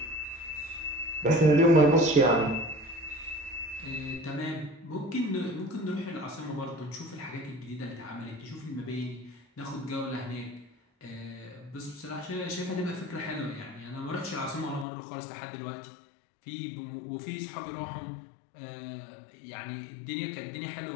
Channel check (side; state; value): right; drops out; at 14.9 s